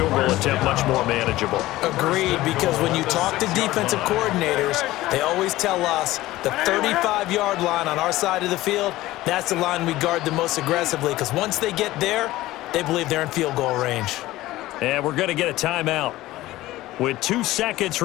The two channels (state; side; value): quieter; right; 16.9 dB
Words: goal attempt much more manageable. Agreed, because when you talk to defensive coordinators, they always tell us the 35-yard line on our side of the field, that's the line we guard the most aggressively, because once they get there, they believe they're in field goal range. And we're going to get a timeout with 2 seconds